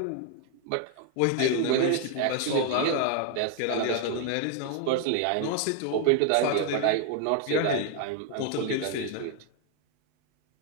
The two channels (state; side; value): different; both; correlation 0.00